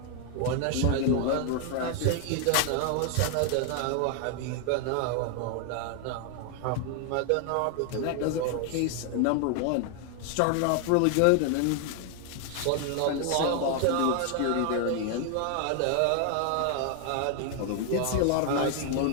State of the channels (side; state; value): both; different; correlation 0.00